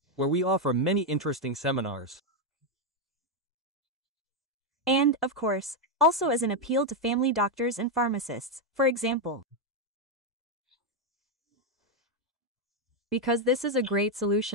where we offer many interesting seminars. And, of course, also as an appeal to family doctors and pharmacists, for example. Because this is a great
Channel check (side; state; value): both; normal; correlation 0.03